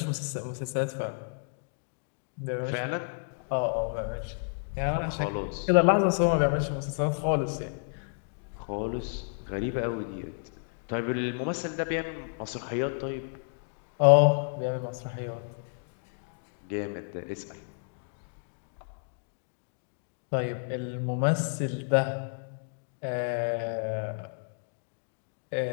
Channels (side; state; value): right; silent; digital silence